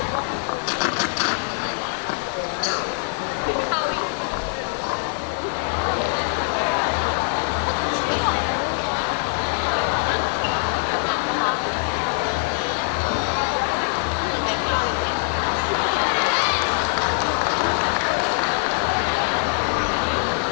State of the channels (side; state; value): right; silent; 61 dB below the other